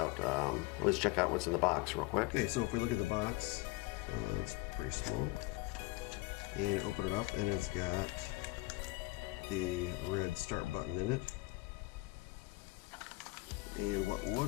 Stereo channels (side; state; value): right; quieter; 21.6 dB